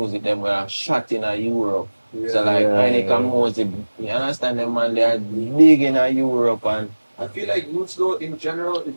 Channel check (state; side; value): inverted; both; correlation -1.00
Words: them were shot in Europe. So like Ainika Mosey, you understand them man, they are big in Europe and I feel like roots though in general is